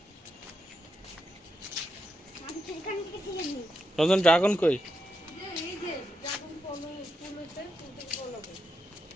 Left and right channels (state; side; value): normal; both; correlation 0.84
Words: আমি সেখান থেকে কিনে নিই রঞ্জন ড্রাগন কই এই যে ড্রাগন ফুল হচ্ছে ফুল থেকে ফল হবে